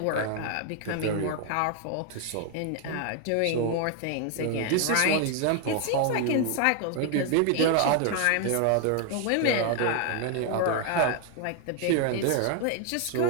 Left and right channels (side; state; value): both; different; correlation 0.00